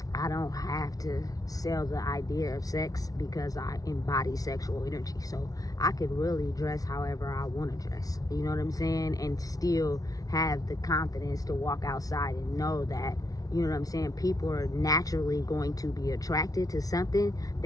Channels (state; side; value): late; right; 0.18 ms